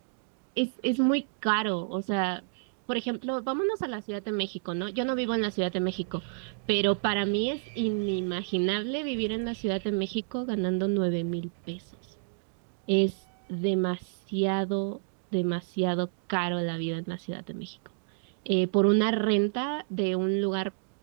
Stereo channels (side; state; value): left; silent; digital silence